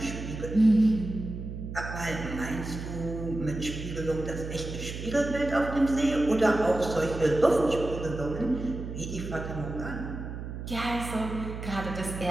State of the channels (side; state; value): right; noise; hum, 8 dB below the sound